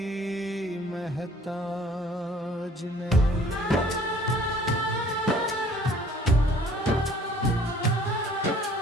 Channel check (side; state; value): both; normal; correlation 0.54